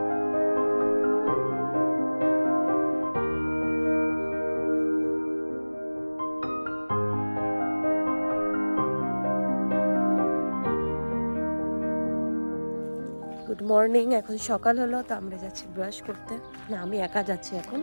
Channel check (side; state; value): both; inverted; correlation -1.00